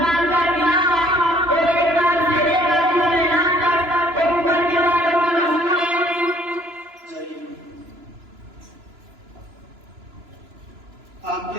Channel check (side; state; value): left; late; 2.9 ms